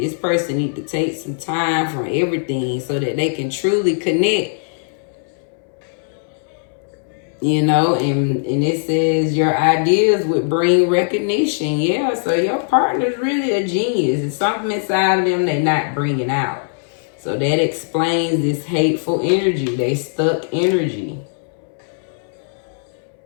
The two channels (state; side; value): silent; right; 65 dB below the other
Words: person need to take some time from everything so that they can truly connect. And it says your ideas would bring recognition. Yeah, so your partner's really a genius. It's something inside of them they're not bringing out. So that explains this hateful energy. They stuck energy.